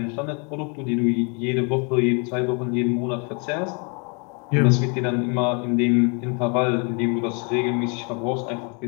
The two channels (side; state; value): right; quieter; 35.4 dB